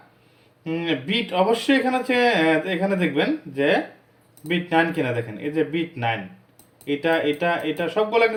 বিট অবশ্যই এখানে হচ্ছে এখানে দেখবেন যে বিট 9 কিনা, দেখেন এই যে বিট 9, এটা এটা এটা সবগুলো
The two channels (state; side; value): identical; both; correlation 1.00